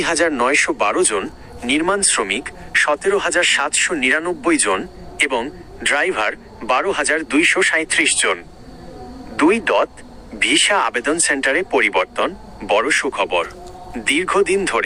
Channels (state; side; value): identical; both; correlation 1.00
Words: জন, নির্মাণ শ্রমিক 17,799 জন এবং ড্রাইভার 12,237 জন। ভিসা আবেদন সেন্টারে পরিবর্তন, বড় সুখবর। দীর্ঘদিন